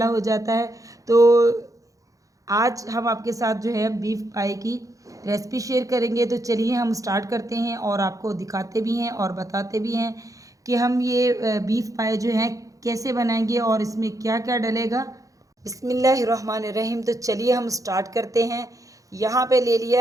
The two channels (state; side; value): late; left; 0.16 ms